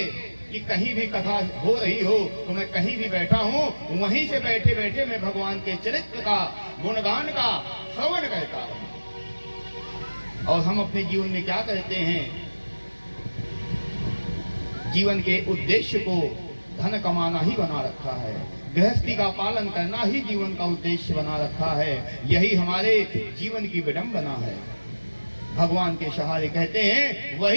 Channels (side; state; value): both; inverted; correlation -1.00